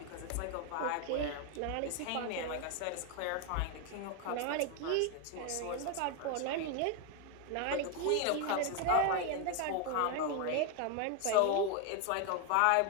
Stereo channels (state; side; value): different; both; correlation 0.01